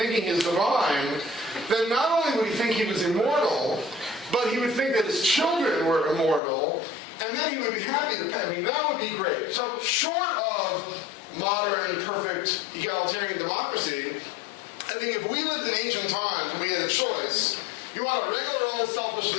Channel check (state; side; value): drops out; right; at 6.4 s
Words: he's divine, then not only would he think he was immortal, but he would think that his children were immortal, and then he would be happy to pay. I mean, that would be great. So short of modern, perfect, egalitarian democracy, I think if we lived in ancient times and we had a choice, you want a regular old selfish